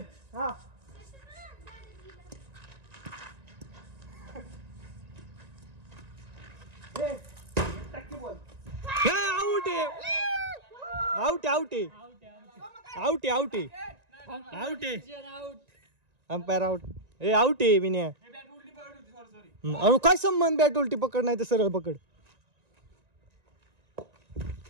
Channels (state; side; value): late; left; 1.9 ms